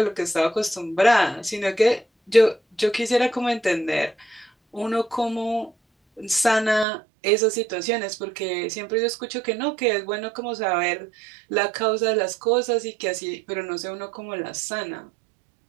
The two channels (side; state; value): left; drops out; at 6.9 s